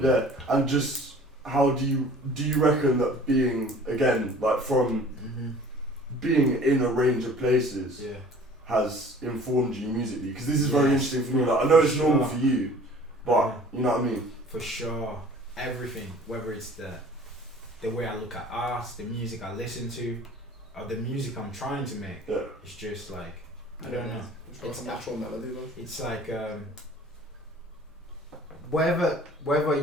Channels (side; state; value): both; normal; correlation 0.48